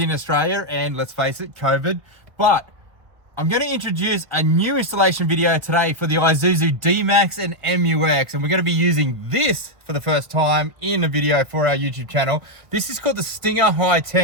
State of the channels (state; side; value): late; left; 1.4 ms